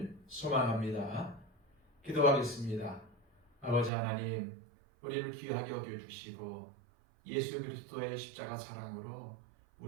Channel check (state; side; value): drops out; left; at 3.9 s